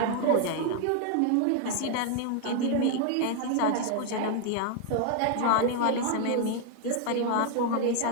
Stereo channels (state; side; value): different; both; correlation 0.00